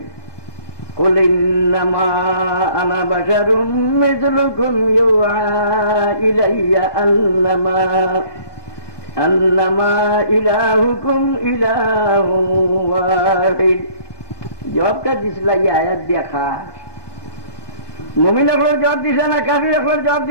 কুল ইন্নামা আনা বাশারুম মিসলুকুম ইউআ ইলাইয়া আন্নামা ইলাহুকুম ইলাহুন ওয়াহিদ। জবাবটা দিছিল এই আয়াত দিয়া খাস মুমিন একবার জবাব দিছে না কাফির একবার জবাব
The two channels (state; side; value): late; right; 1.2 ms